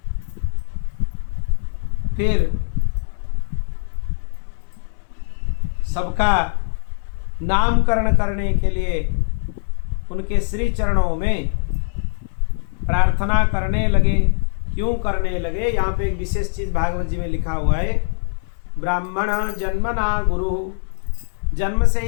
फिर सबका नामकरण करने के लिए उनके श्री चरणों में प्रार्थना करने लगे। क्यों करने लगे? यहाँ पे एक विशेष चीज भागवत जी में लिखा हुआ है, ब्राह्मण जन्मना गुरु, जन्म से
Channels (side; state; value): right; silent; 65 dB below the other